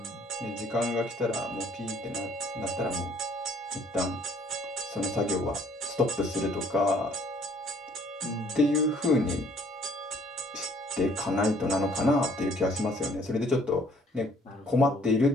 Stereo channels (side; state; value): both; normal; correlation 0.60